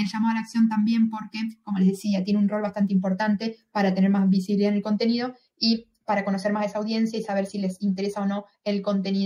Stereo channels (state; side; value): identical; both; correlation 1.00